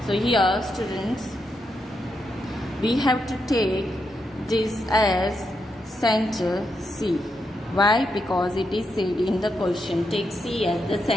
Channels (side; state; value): both; normal; correlation 0.83